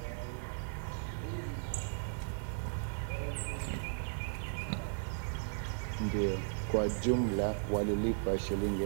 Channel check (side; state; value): left; silent; digital silence